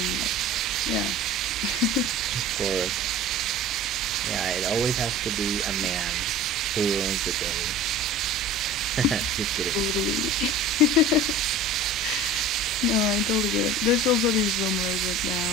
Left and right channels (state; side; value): normal; both; correlation 0.39